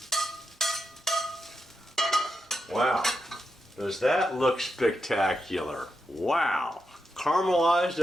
Wow, does that look spectacular? Wow, caramelized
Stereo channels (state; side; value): normal; both; correlation 0.86